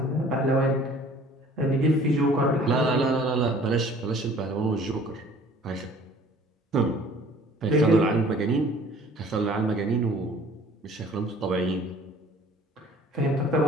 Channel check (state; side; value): normal; both; correlation 0.51